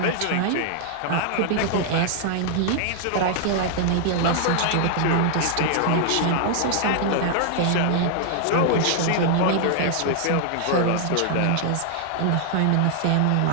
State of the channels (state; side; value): different; both; correlation 0.00